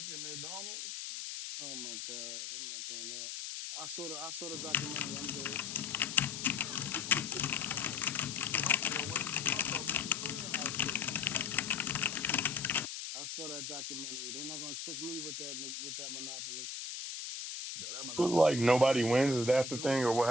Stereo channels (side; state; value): left; noise; hiss, 6 dB below the sound